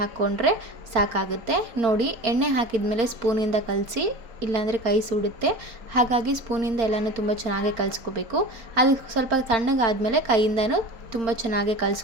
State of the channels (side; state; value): left; late; 4.4 ms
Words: ಸಾಕಾಗುತ್ತೆ. ನೋಡಿ ಎಣ್ಣೆ ಹಾಕಿದ ಮೇಲೆ ಸ್ಪೂನಿಂದ ಕಲಸಿ, ಇಲ್ಲಾಂದರೆ ಕೈ ಸುಡುತ್ತೆ. ಹಾಗಾಗಿ ಸ್ಪೂನಿಂದ ಎಲ್ಲನೂ ತುಂಬ ಚೆನ್ನಾಗಿ ಕಲಿಸ್ಕೋಬೇಕು. ಅದು ಸ್ವಲ್ಪ ತಣ್ಣಗಾದಮೇಲೆ ಕೈಯಿಂದನೂ ತುಂಬ ಚೆನ್ನಾಗಿ